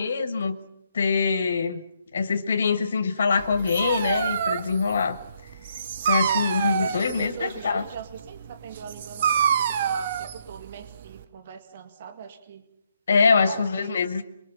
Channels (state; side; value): inverted; both; correlation -0.75